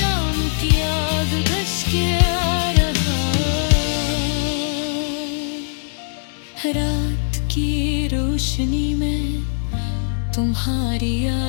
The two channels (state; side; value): silent; right; 63 dB below the other